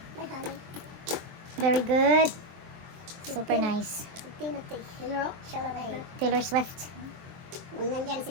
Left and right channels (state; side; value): late; left; 23 ms